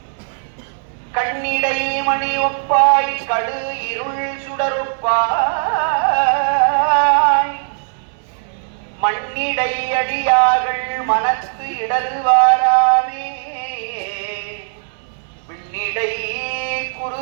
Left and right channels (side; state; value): left; silent; digital silence